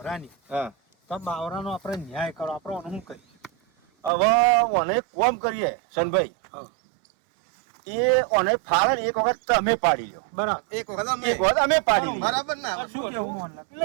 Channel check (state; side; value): drops out; left; at 4.1 s